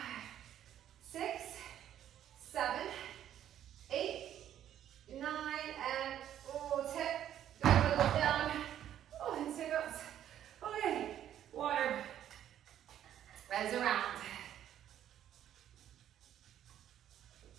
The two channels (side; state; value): left; quieter; 10.9 dB